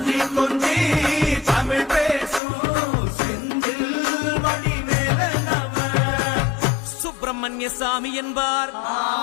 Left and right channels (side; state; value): right; drops out; at 2.4 s